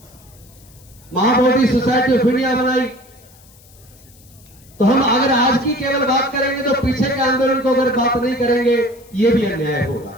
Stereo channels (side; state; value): left; noise; hiss, 26 dB below the sound